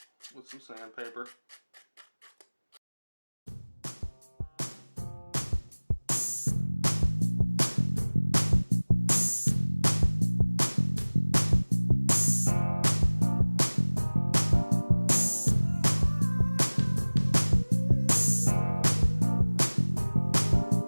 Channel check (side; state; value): both; inverted; correlation -1.00